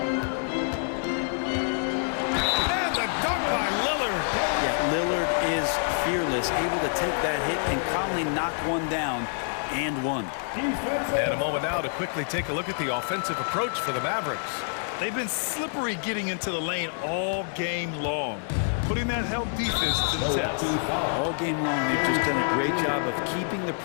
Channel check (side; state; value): right; silent; digital silence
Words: the dunk by Lillard. Yeah, Lillard is fearless, able to take that hit and calmly knock one down and one. And a moment now to quickly take a look at the offensive approach for the Mavericks. They've been slippery getting into the lane all game long. putting that help defense to the test. All game long, they've just done a great job of keeping the